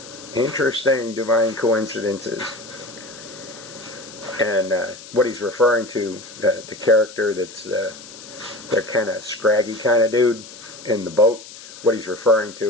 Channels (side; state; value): left; noise; hiss, 16 dB below the sound